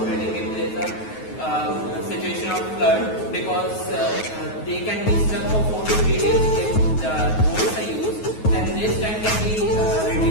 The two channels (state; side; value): late; right; 9.4 ms